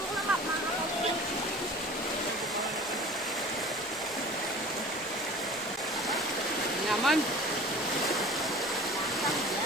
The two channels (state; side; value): normal; both; correlation 0.42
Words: na makakalaw. Naman.